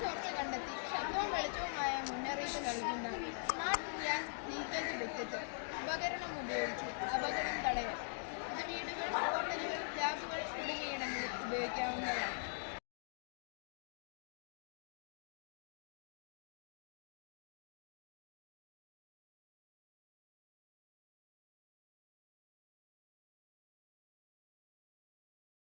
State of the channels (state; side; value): silent; right; digital silence